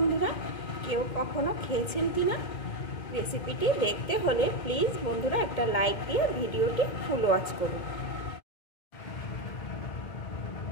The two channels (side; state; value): right; late; 1.7 ms